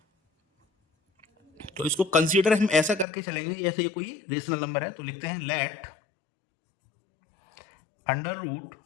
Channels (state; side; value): drops out; right; at 3.1 s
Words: तो इसको कंसीडर हम ऐसा करके चलेंगे जैसे ये कोई रेशनल नंबर है। तो लिखते हैं let under root